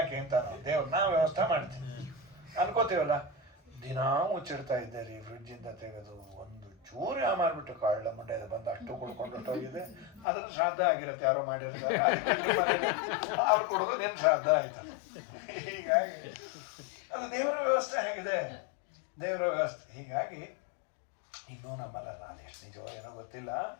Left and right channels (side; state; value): right; drops out; at 10.2 s